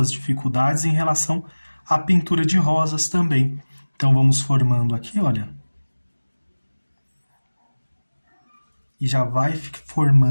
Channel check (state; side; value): inverted; both; correlation -1.00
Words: dificuldades em relação à pintura de rosas também. Então, vamos formando aqui, olha. E já vai